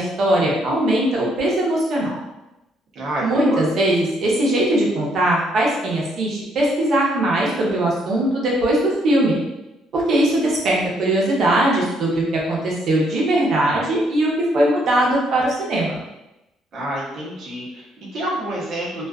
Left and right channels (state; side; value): normal; both; correlation 0.70